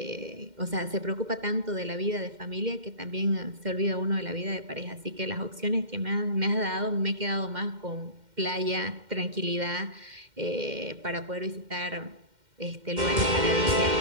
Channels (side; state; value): left; late; 2.1 ms